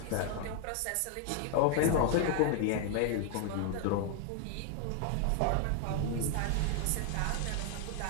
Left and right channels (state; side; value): different; both; correlation 0.00